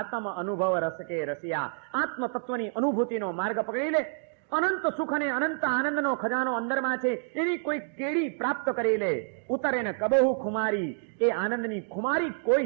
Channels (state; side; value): silent; left; digital silence